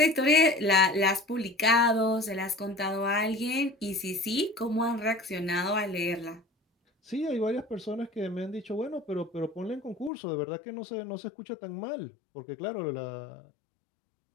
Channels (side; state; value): right; drops out; at 10.1 s